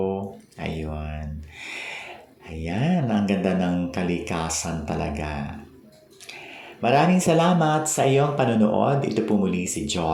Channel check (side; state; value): both; identical; correlation 1.00